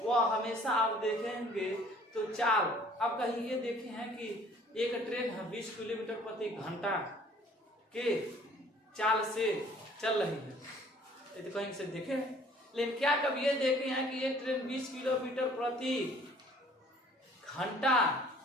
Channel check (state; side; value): normal; both; correlation 0.55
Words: वह हमेशा आप देखेंगे तो चाल, आप कहीं ये देखे हैं कि एक ट्रेन है 20 किलोमीटर प्रति घंटा के चाल से चल रही है, ये तो कहीं से देखे हैं। लेकिन क्या कभी ये देखे हैं कि ये ट्रेन 20 किलोमीटर प्रति घंटा